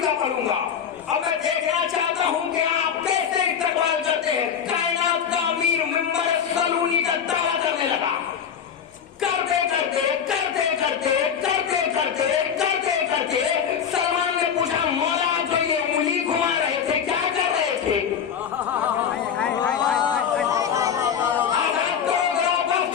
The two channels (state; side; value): quieter; right; 7.8 dB